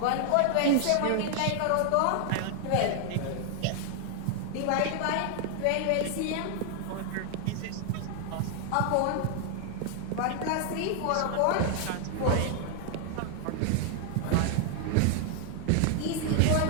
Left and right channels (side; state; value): both; different; correlation 0.00